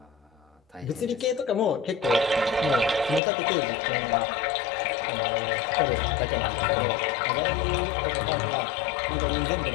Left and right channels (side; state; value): right; drops out; at 3.2 s